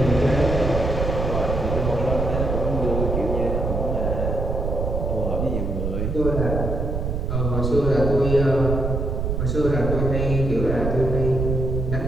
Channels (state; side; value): noise; right; rumble, 1 dB below the sound